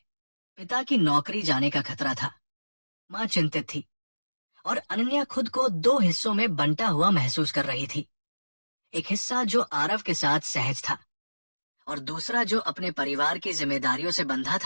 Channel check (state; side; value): inverted; both; correlation -1.00